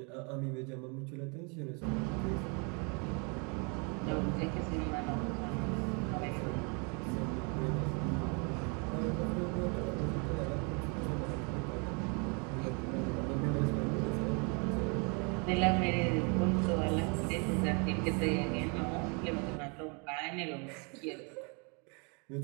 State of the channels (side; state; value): left; quieter; 34.1 dB